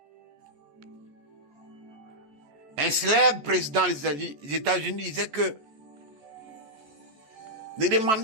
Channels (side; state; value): left; late; 14 ms